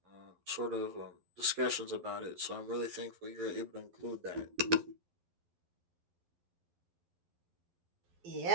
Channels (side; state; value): left; late; 11 ms